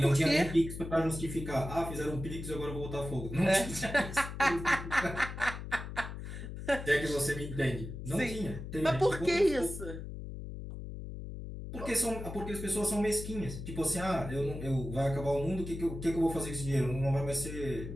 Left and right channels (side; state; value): left; noise; hum, 8 dB below the sound